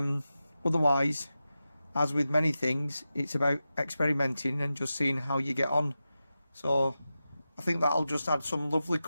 as with many things, it's about experimenting and just seeing how you get on. So I think that'll just add some lovely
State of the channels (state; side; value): inverted; both; correlation -0.92